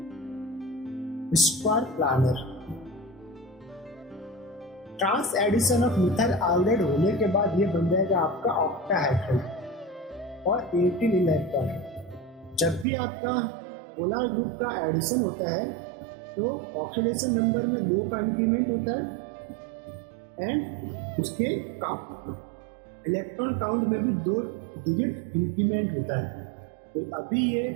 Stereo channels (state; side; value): drops out; left; at 12.9 s